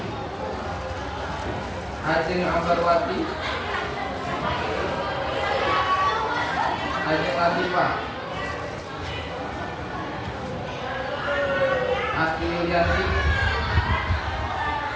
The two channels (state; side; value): identical; both; correlation 1.00